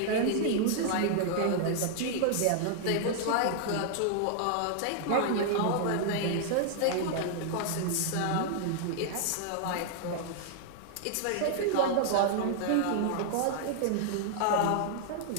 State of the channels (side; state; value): both; different; correlation -0.01